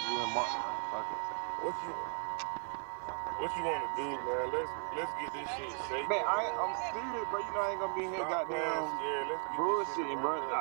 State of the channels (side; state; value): left; silent; 53 dB below the other